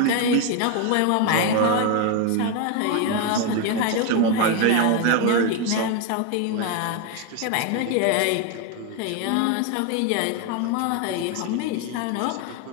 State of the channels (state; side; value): different; both; correlation 0.02